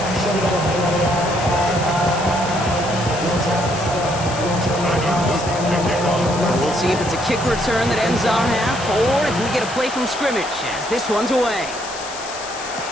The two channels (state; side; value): noise; left; hiss, 12 dB below the sound